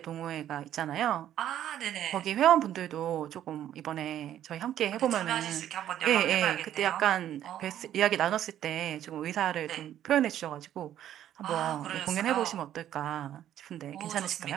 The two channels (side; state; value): left; quieter; 11.4 dB